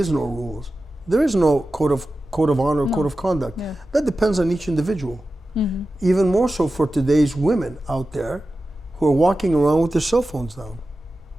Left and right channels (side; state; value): both; normal; correlation 0.94